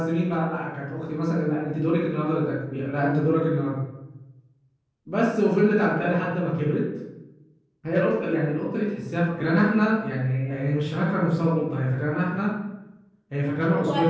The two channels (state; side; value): identical; both; correlation 1.00